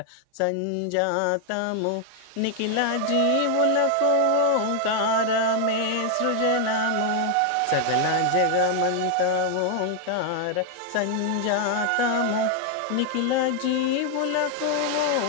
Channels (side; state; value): both; different; correlation 0.00